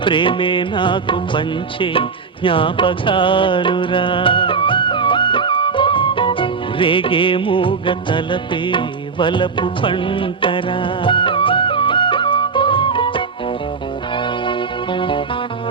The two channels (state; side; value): quieter; left; 5.2 dB